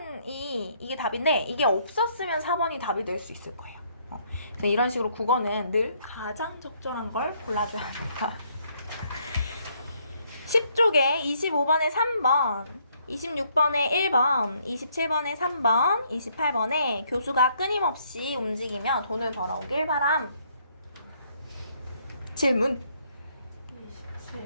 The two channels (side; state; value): both; inverted; correlation -0.69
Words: 이게 답인데 이게 없었으면 4번이 답이 될 수 있을 거예요. 그래서 이런 식으로 국어는 늘 가장 적절한 걸 골라줘야 합니다. 10쪽에 25번에 3번, 26번에 1번, 27번에 3번, 28번에 교수가 끊임없이 움직이며 돈을 벌어오길 바람. 질문.